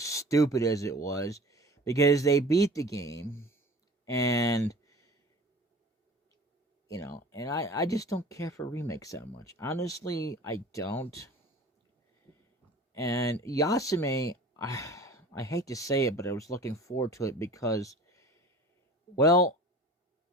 as it was, because they beat the game, and, and I just don't care for remakes that much. Honestly, I don't. And Yasume, I hate to say it, but I was looking forward to it because, well,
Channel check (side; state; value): both; normal; correlation 0.42